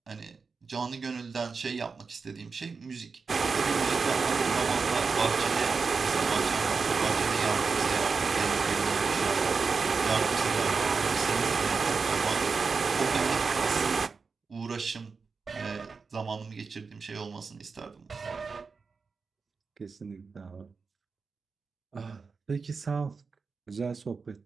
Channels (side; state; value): left; quieter; 4.8 dB